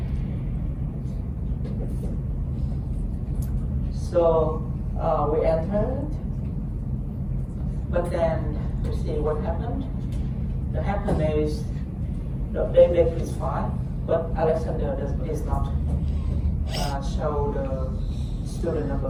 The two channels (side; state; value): both; identical; correlation 1.00